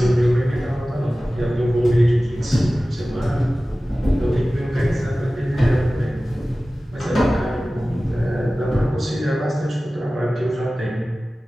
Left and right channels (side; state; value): both; normal; correlation 0.96